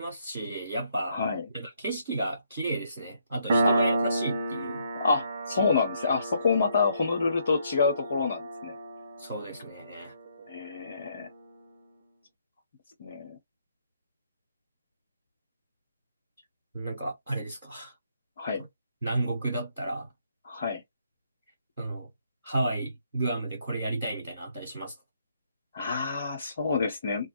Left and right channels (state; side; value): inverted; both; correlation -0.72